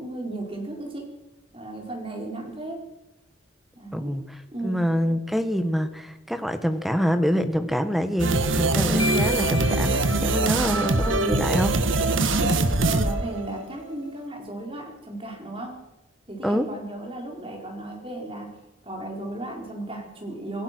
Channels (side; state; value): both; normal; correlation 0.63